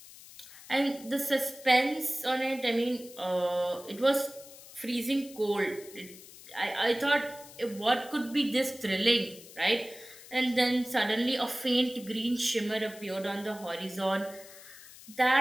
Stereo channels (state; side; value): noise; left; hiss, 18 dB below the sound